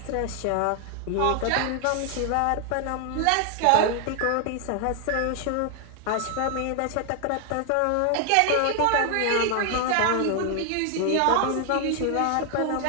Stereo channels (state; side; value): different; both; correlation 0.00